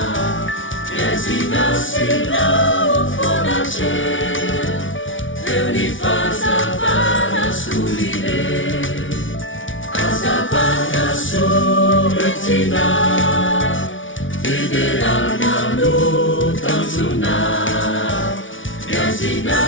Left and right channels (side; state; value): right; late; 0.56 ms